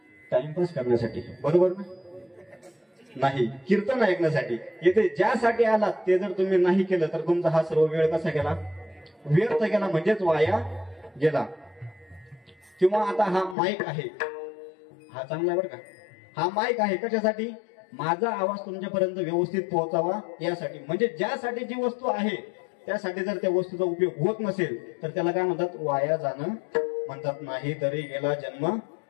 टाइमपास करण्यासाठी, बरोबर ना, नाही कीर्तन ऐकण्यासाठी. येथे ज्यासाठी आलात ते जर तुम्ही नाही केलं तर तुमचा हा सर्व वेळ कसा गेला, व्यर्थ गेला, म्हणजेच वाया गेला. किंवा आता हा माईक आहे, हा चांगला आहे बरं का, हा माईक आहे कशासाठी, माझा आवाज तुमच्यापर्यंत व्यवस्थित पोहोचावा यासाठी. म्हणजे ज्यासाठी जी वस्तू आहे त्यासाठी जर त्या वस्तूचा उपयोग होत नसेल तर त्याला काय म्हणतात, वाया जाणं म्हणतात. नाही तरी गेला जन्म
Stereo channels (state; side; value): drops out; right; at 13.6 s